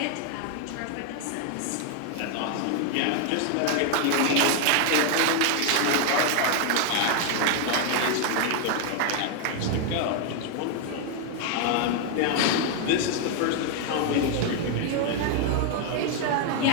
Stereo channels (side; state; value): both; different; correlation 0.00